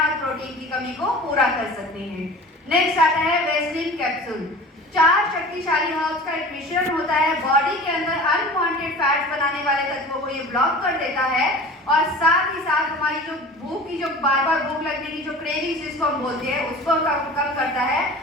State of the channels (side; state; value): both; normal; correlation 0.39